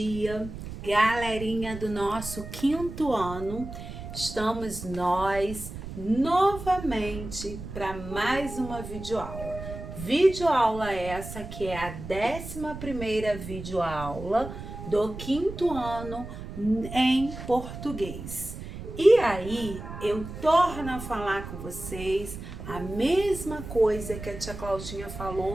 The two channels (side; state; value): right; noise; rumble, 10 dB below the sound